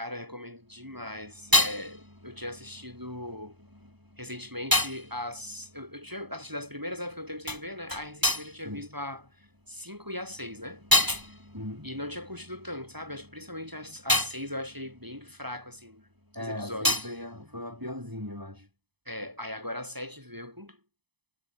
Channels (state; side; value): late; left; 0.99 ms